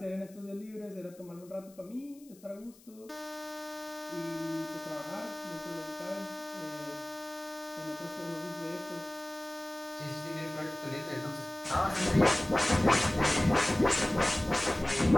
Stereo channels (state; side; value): noise; left; hiss, 25 dB below the sound